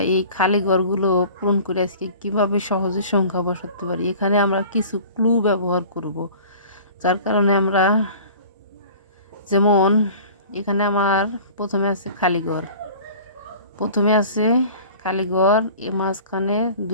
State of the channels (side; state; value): both; inverted; correlation -0.44